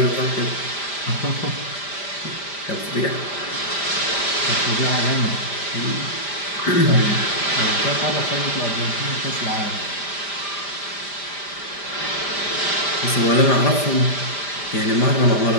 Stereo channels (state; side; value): late; right; 5.0 ms